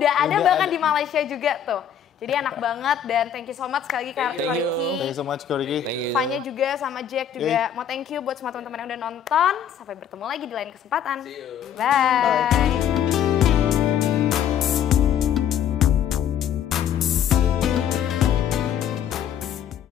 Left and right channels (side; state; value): right; quieter; 9.1 dB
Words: ada bahkan di Malaysia juga tuh. Jadi enak banget dan thank you so much sekali lagi Ko Ricky. Thank you so much Ko Ricky. Fanya juga sama Jack juga. Mau thank you buat semua teman-teman yang udah nonton. Sampai bertemu lagi di lain kesempatan. See you. Bye.